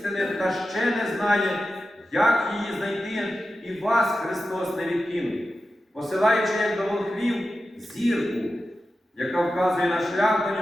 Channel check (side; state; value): both; normal; correlation 0.92